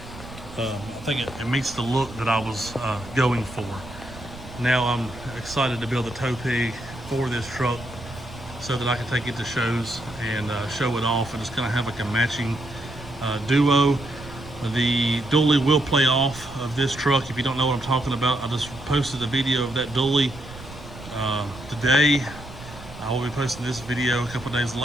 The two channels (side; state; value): right; noise; rumble, 15 dB below the sound